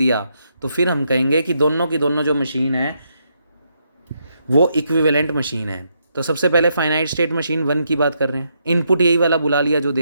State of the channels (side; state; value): both; inverted; correlation -0.78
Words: तो फिर हम कहेंगे कि दोनों की दोनों जो मशीन है वो इक्विवेलेंट मशीन है। तो सबसे पहले फाइनाइट स्टेट मशीन 1 की बात कर रहे हैं। इनपुट यही वाला बुला लिया जो